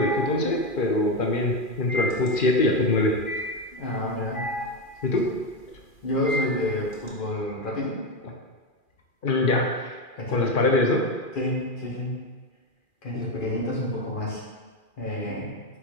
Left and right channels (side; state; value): right; late; 2.4 ms